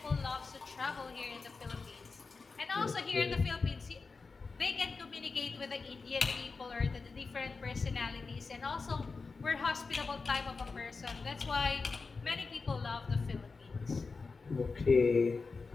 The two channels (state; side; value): quieter; right; 4.4 dB